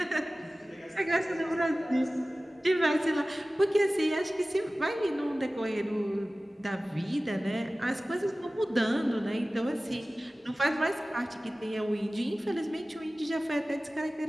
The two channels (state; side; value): normal; both; correlation 0.97